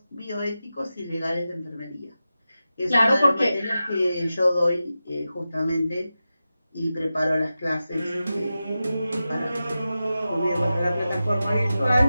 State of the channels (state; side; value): inverted; both; correlation -0.93